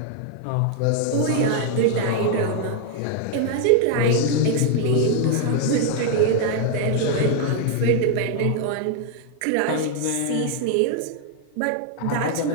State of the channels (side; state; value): both; different; correlation 0.00